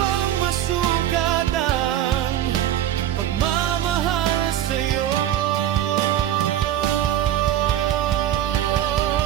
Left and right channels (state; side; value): quieter; left; 11.8 dB